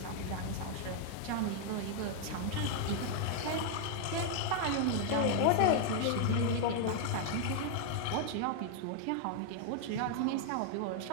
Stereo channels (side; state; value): both; different; correlation 0.00